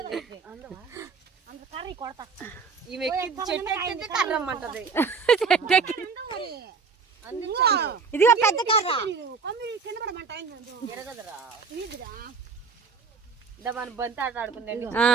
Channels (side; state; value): left; quieter; 5.3 dB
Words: ఇదిగో పెద్ద కర్ర. మన బంతి ఆట ఆడుకుందండి.